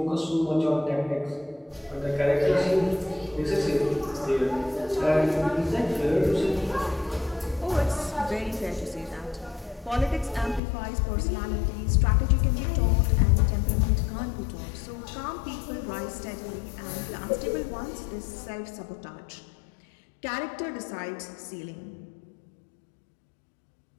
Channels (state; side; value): drops out; right; at 10.6 s